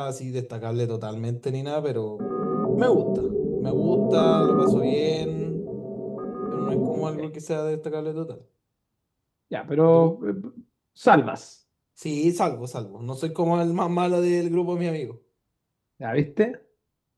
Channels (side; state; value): both; identical; correlation 1.00